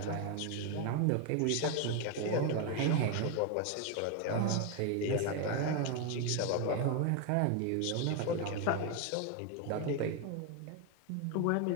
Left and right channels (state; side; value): different; both; correlation 0.01